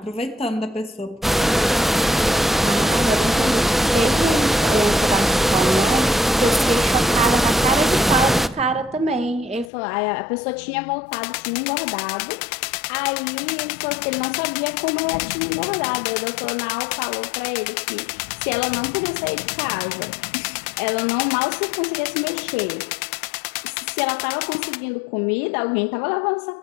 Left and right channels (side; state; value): right; drops out; at 9.7 s